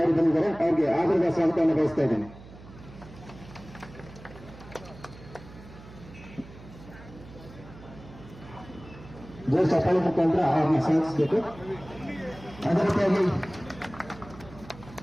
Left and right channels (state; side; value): noise; right; hum, 18 dB below the sound